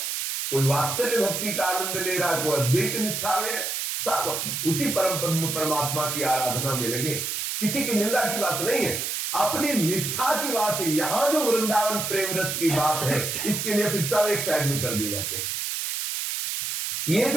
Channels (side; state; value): right; noise; hiss, 2 dB below the sound